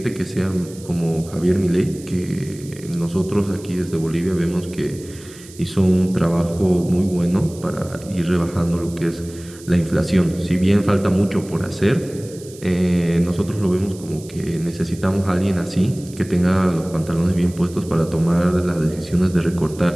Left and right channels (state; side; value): noise; right; hiss, 20 dB below the sound